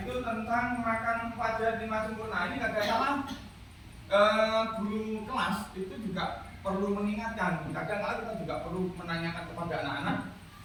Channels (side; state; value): both; identical; correlation 1.00